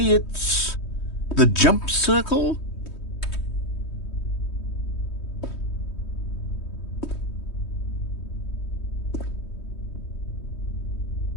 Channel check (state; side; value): late; right; 3.2 ms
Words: It's the jump circle.